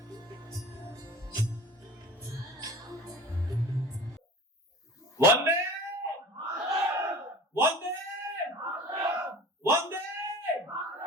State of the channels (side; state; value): both; normal; correlation 0.40